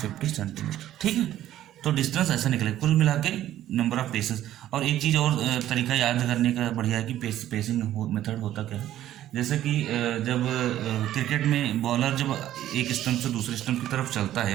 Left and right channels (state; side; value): quieter; left; 12.8 dB